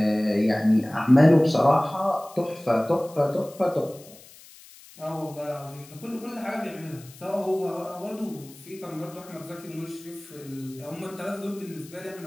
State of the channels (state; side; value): noise; left; hiss, 21 dB below the sound